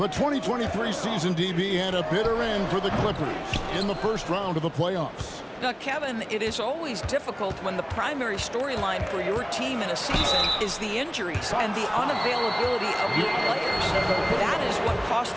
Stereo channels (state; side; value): identical; both; correlation 1.00